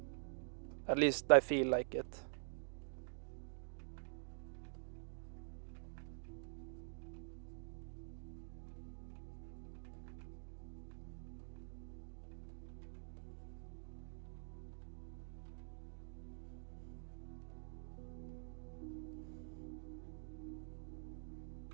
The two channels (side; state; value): left; silent; digital silence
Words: At least I feel like it.